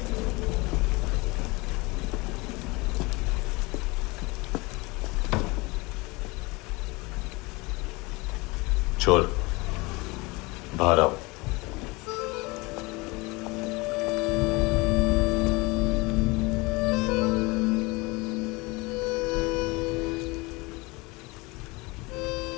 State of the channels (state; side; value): quieter; right; 24.8 dB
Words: चोर, बाहर आओ।